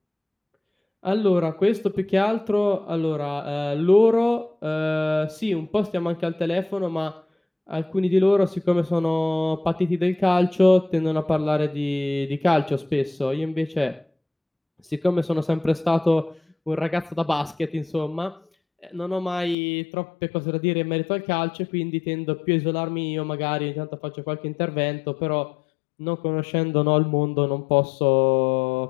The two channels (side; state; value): right; drops out; at 19.6 s